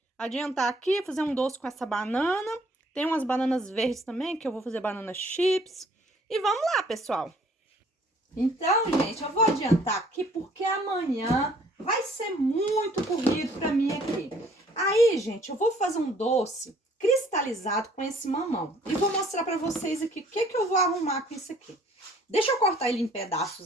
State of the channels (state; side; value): normal; both; correlation 0.58